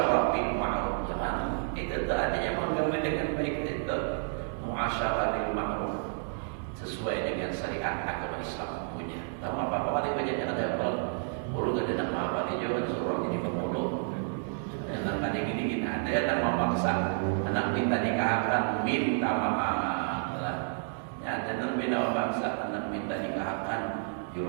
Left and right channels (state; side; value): silent; left; digital silence